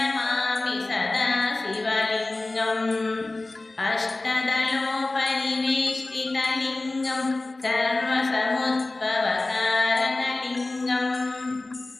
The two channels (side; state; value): right; quieter; 3.0 dB